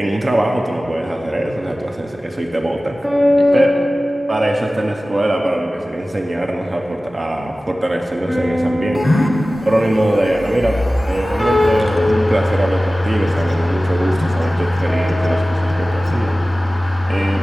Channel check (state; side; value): normal; both; correlation 0.96